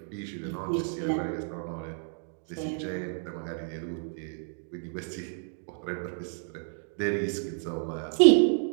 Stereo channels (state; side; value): silent; left; 58 dB below the other